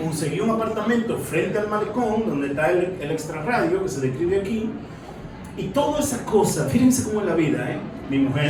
un apartamento frente al malecón, donde está el extrarradio, que se describe aquí, y toda esa cosa, fíjense cómo es la vida, mi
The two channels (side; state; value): both; identical; correlation 1.00